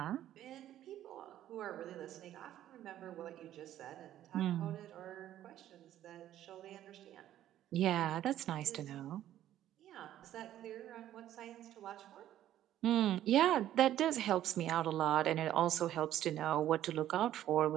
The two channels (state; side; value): quieter; left; 12.3 dB